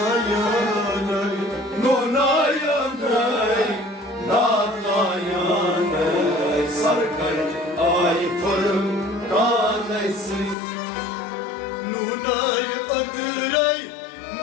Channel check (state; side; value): drops out; right; at 10.6 s